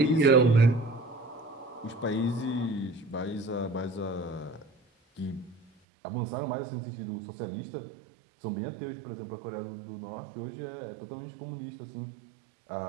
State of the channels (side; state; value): left; drops out; at 5.7 s